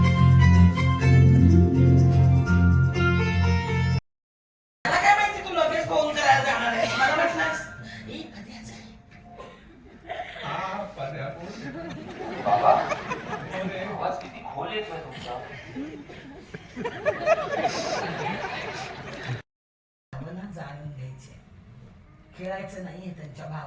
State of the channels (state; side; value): identical; both; correlation 1.00